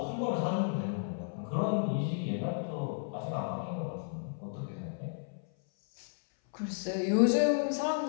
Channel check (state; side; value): silent; right; 56 dB below the other